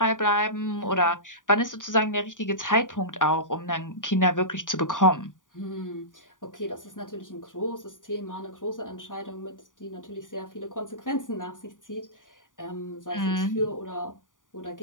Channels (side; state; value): right; late; 0.88 ms